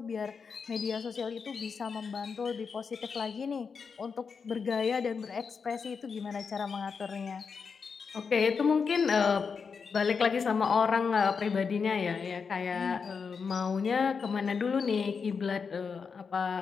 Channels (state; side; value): quieter; right; 5.6 dB